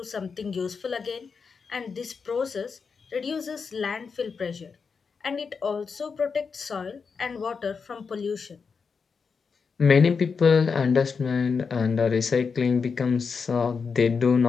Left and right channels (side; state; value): right; quieter; 5.4 dB